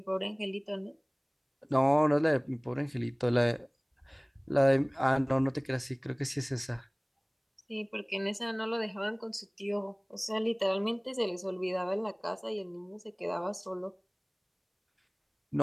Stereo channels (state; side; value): identical; both; correlation 1.00